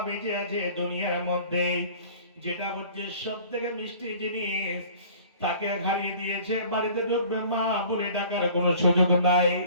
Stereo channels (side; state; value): both; inverted; correlation -0.48